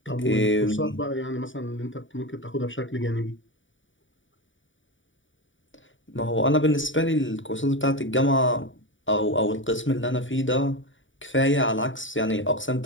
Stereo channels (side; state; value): right; late; 0.56 ms